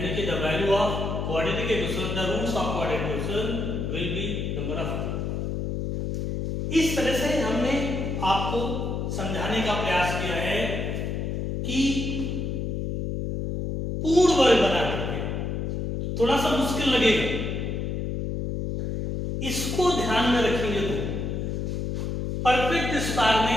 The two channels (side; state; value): left; noise; hum, 2 dB below the sound